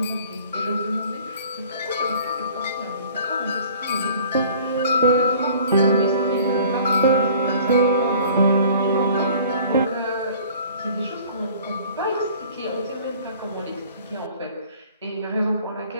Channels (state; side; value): inverted; both; correlation -0.50